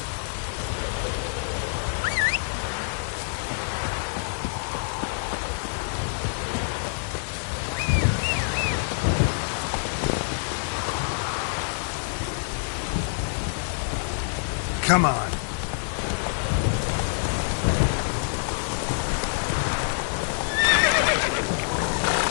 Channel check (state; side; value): silent; right; 57 dB below the other